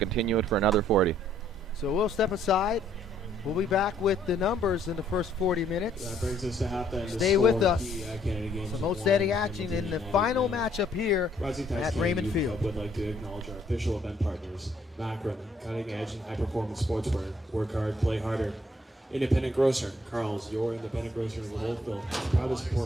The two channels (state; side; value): normal; both; correlation 0.66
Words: it for another 40. So we'll step aside. We'll be back with the numbers in the first 40 minutes. That brings us to halftime. Stay with us. Some outstanding action in the final matchup here at Raymond Field. Would like to acknowledge our official event partners: Macron, cutting edge and high performance sportswear. Work hard, play harder. Independent Grocer, Carl's, your independent grocer in Wolfville, proud to